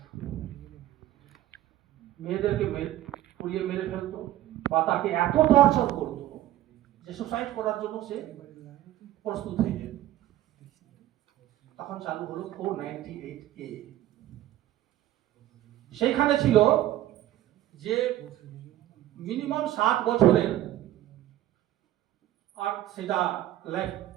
মেয়েদেরকে পুড়িয়ে মেরে ফেলতো, বা তাকে এত টর্চার করতো যে সুসাইড করার জন্য সে প্রস্তুত হয়ে যেত। তখন চালু হলো 498A। সেইখানে ছিল যে মিনিমাম 7 বছরের, আর সেটা লাইফ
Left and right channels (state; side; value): quieter; left; 13.8 dB